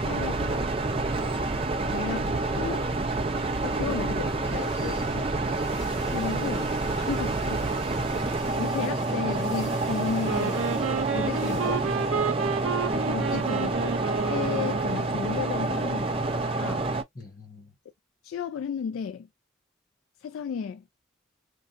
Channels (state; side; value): normal; both; correlation 0.33